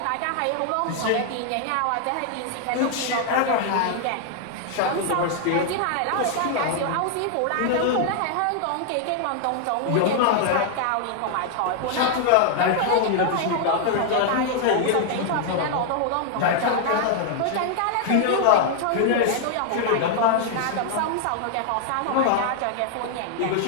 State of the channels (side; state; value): both; different; correlation 0.00